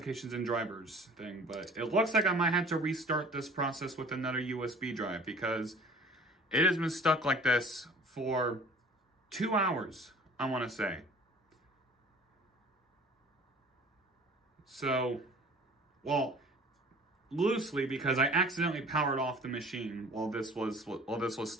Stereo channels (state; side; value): normal; both; correlation 0.47